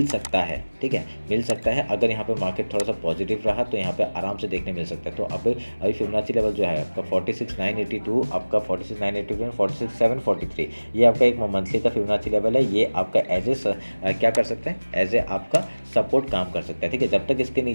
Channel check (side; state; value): both; inverted; correlation -1.00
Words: सकता है, ठीक है, मिल सकता है। अगर यहाँ पे मार्केट थोड़ा सा पॉजिटिव रहा तो यहाँ पे आराम से देखने मिल सकता है। तो अभी फिबोनाची लेवल जो है आपका 46,982, आपका 46,982, 46,743, ये आपका एक मंथली का फिबोनाची लेवल है। ये आपका एज ए क्या कर सकते हैं, एज ए आपका सपोर्ट काम कर सकता है, ठीक है। जब तक इसके